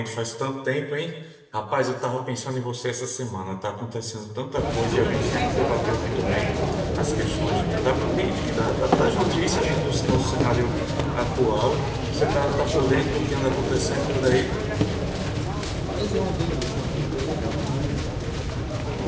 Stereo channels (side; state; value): both; identical; correlation 1.00